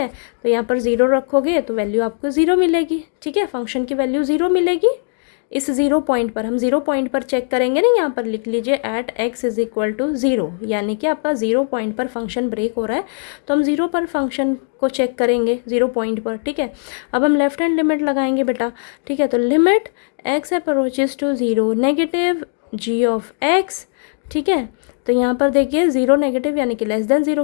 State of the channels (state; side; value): silent; right; 66 dB below the other